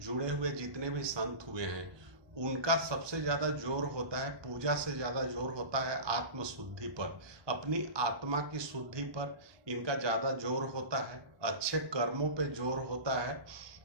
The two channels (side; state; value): left; late; 1.2 ms